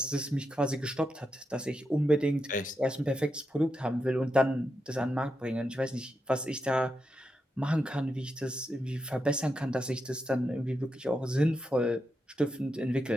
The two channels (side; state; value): both; normal; correlation 0.86